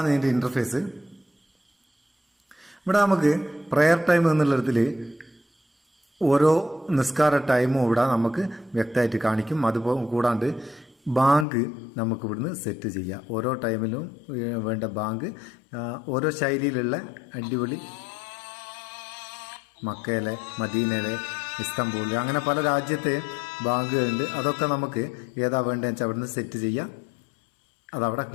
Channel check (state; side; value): drops out; right; at 11.5 s